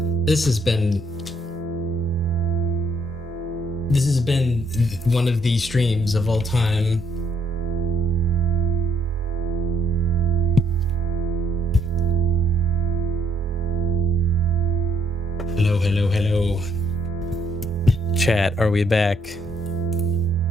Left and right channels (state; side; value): normal; both; correlation 0.69